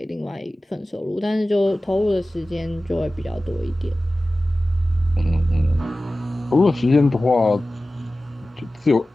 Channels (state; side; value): normal; both; correlation 0.96